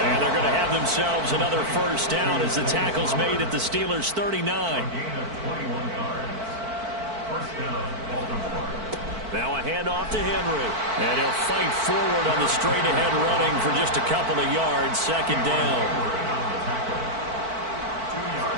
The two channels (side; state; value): left; late; 4.5 ms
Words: And they're going to have themselves another 1st down as the tackle's made at the Steelers' 39. Now a handoff to Henry. And he'll fight forward on the straight-ahead running for just a couple of yards. 2nd down.